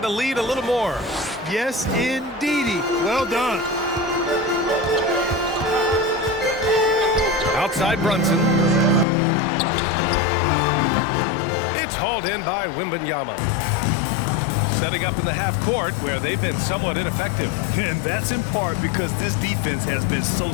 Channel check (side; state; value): right; drops out; at 9.1 s